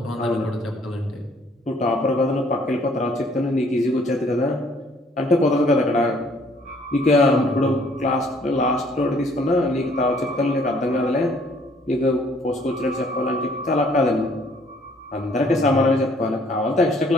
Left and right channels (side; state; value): both; normal; correlation 0.62